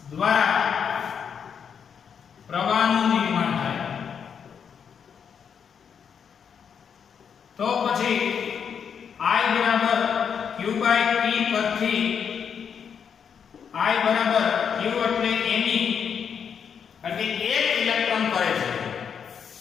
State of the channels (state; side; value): quieter; right; 7.2 dB